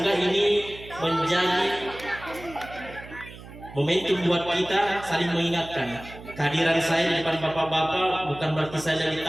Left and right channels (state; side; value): noise; right; hum, 16 dB below the sound